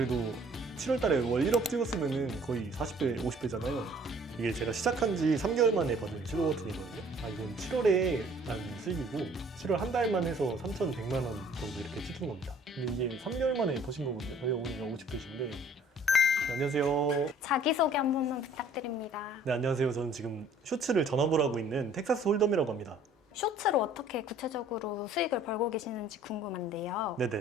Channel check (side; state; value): both; normal; correlation 0.56